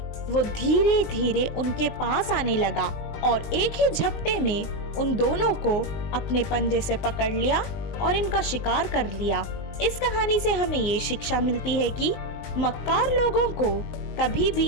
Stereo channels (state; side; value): late; right; 19 ms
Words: वो धीरे धीरे उनके पास आने लगा और एक ही झपटे में उन दोनों को अपने पंजे से पकड़ लिया और इनका शिकार कर लिया। इस कहानी से हमें ये शिक्षा मिलती है कि मक्कार लोगों को कभी भी